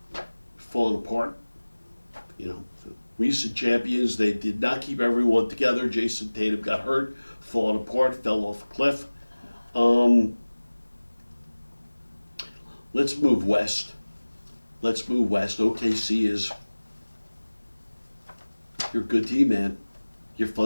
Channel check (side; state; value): both; inverted; correlation -1.00